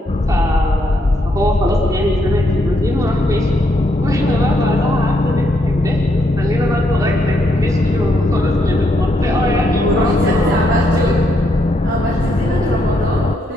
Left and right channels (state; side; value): normal; both; correlation 0.76